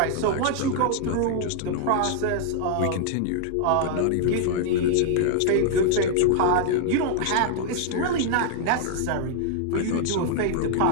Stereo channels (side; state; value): both; different; correlation 0.00